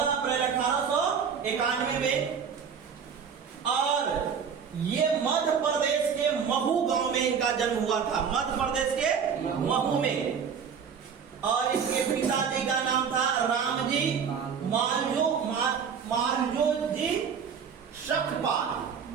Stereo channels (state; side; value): quieter; left; 6.8 dB